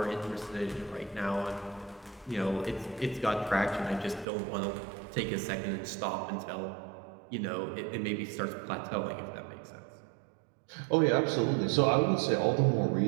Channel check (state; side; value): drops out; left; at 4.2 s